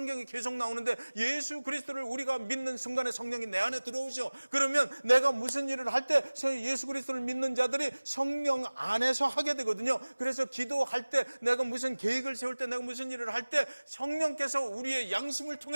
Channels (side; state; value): both; inverted; correlation -1.00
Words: 계속 나오는데 예수 그리스도를 우리가 믿는 순간에 성령이 내 안에 들어오셔. 그러면 내가 무슨 일을 할 때 예수 그리스도를 믿는 자들이 성령 안에서 하게 되거든요. 그래서 기도할 때 내가 무슨 계획을 세울 때 내가 무슨 일을 할 때 성령께서 우리의 양심을